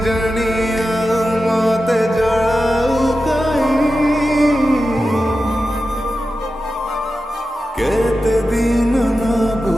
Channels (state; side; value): normal; both; correlation 0.92